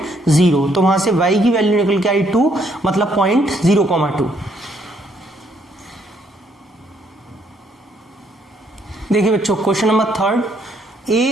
0, तो वहां से y की वैल्यू निकल के आई 2, मतलब पॉइंट 0,2। देखिए बच्चों, question number 3,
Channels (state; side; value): normal; both; correlation 0.70